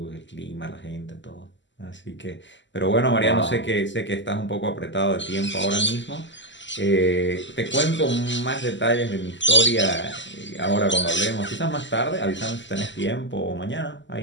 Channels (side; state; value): right; late; 0.54 ms